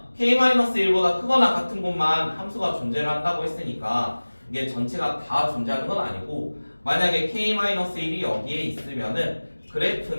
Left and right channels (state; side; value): inverted; both; correlation -1.00